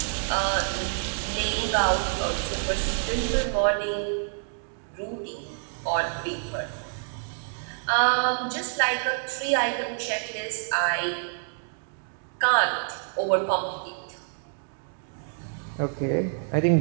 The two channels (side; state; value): left; silent; 60 dB below the other